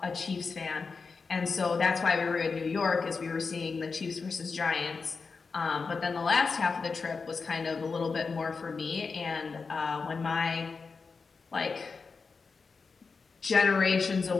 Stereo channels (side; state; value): right; quieter; 4.7 dB